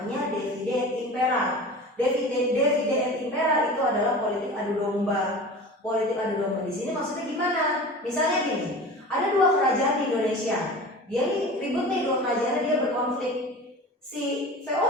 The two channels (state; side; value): normal; both; correlation 0.36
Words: divide et impera. Divide et impera itu adalah politik adu domba. Politik adu domba di sini maksudnya gimana? Misalnya gini, ada dua kerajaan di Indonesia. Dia nih ribut nih, dua kerajaan dia berkonflik. Si